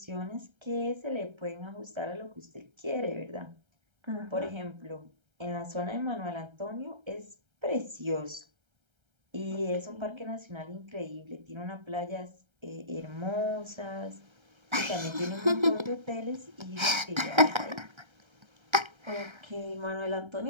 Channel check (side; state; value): left; late; 1.3 ms